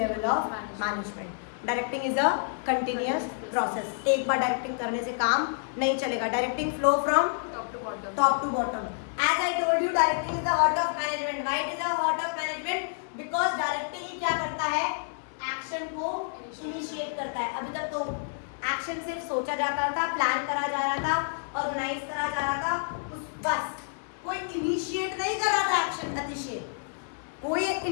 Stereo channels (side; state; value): right; silent; digital silence